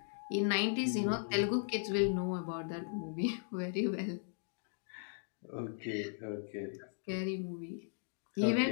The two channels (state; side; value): silent; right; digital silence